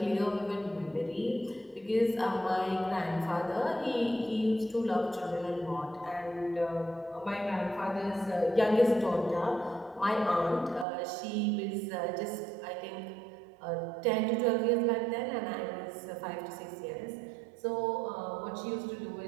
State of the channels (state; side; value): drops out; left; at 10.9 s